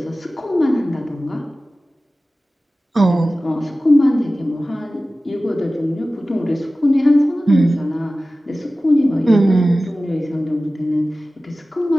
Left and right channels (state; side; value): normal; both; correlation 0.96